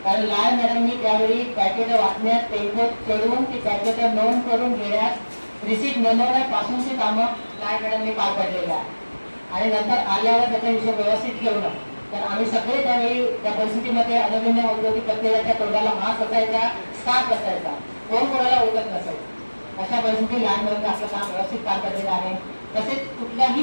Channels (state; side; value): inverted; both; correlation -1.00